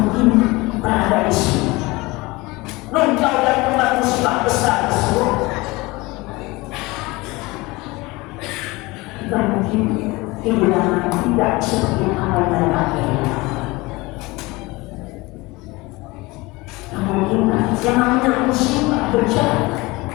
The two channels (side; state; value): right; quieter; 22.6 dB